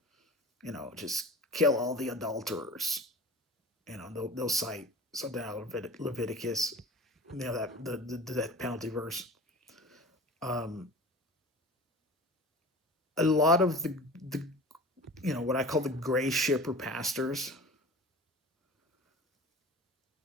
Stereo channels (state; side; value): normal; both; correlation 0.37